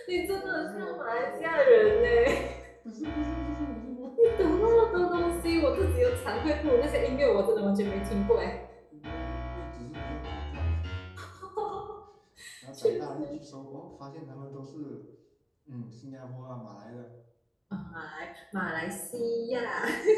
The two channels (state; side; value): identical; both; correlation 1.00